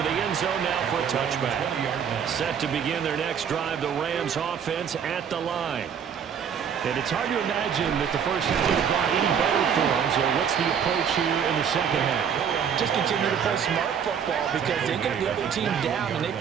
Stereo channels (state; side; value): quieter; left; 7.7 dB